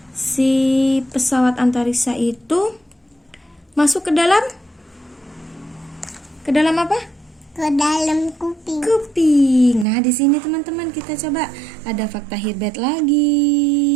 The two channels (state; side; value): drops out; left; at 9.9 s